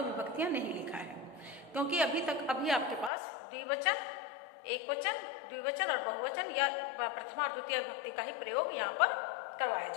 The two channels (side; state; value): right; drops out; at 3.1 s